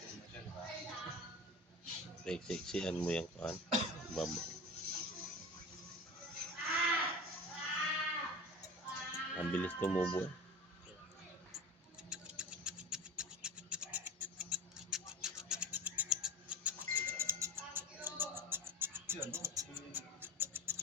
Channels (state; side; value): normal; both; correlation 0.33